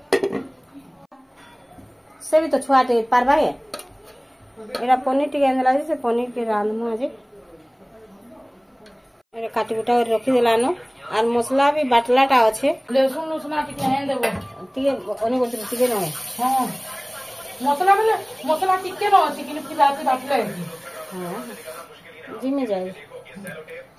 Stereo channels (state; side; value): identical; both; correlation 1.00